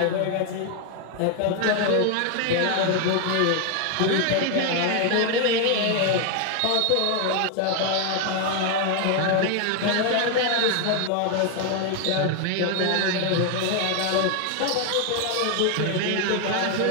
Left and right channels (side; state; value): both; different; correlation 0.01